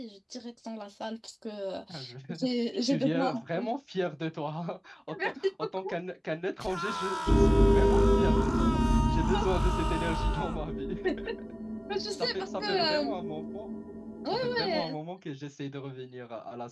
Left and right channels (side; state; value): both; identical; correlation 1.00